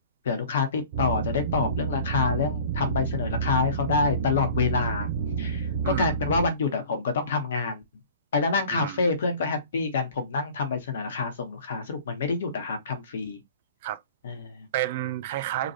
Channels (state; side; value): inverted; both; correlation -0.43